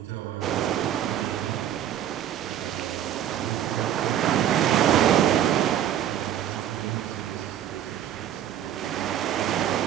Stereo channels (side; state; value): left; quieter; 10.8 dB